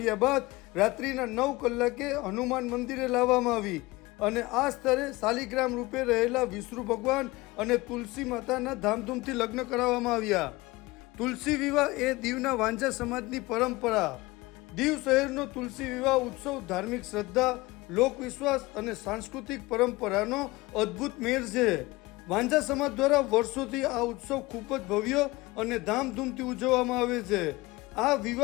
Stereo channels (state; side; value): quieter; right; 21.4 dB